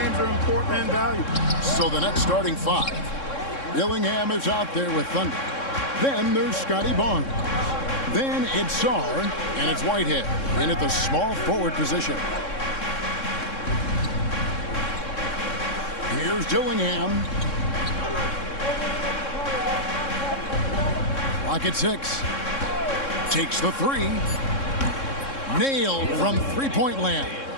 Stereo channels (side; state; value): right; late; 3.7 ms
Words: are important and valuable. So the next starting 5. Dillingham is out there with Thunder. Then there's Scotty Barnes. Then it's Sarr, and it's Whitehead in at the small forward position. Here's Dillingham. Clock at 6. Takes the 3. Nailed from three-point land.